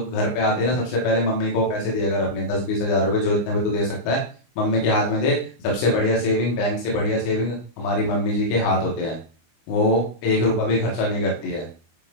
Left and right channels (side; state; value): right; late; 25 ms